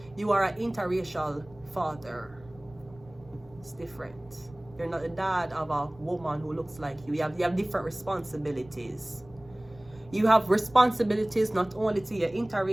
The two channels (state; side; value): noise; right; rumble, 24 dB below the sound